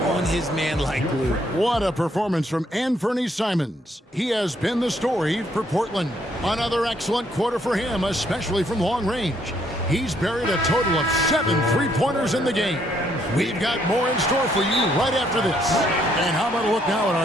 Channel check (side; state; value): both; normal; correlation 0.70